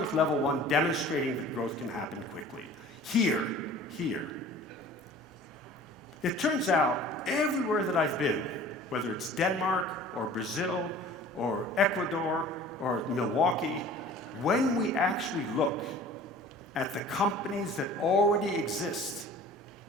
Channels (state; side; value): normal; both; correlation 0.45